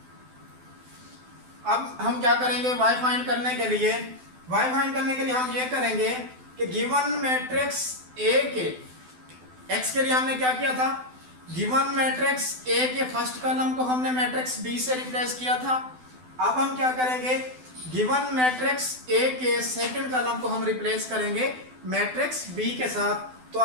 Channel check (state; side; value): late; left; 12 ms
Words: अब हम क्या करेंगे, y फाइंड करने के लिए हम ये करेंगे कि गिवन मैट्रिक्स A के x के लिए हमने क्या किया था, गिवन मैट्रिक्स A के फर्स्ट कॉलम को हमने मैट्रिक्स B से रिप्लेस किया था। अब हम क्या करेंगे, गिवन मैट्रिक्स A के सेकंड कॉलम को हम रिप्लेस करेंगे मैट्रिक्स B के साथ। तो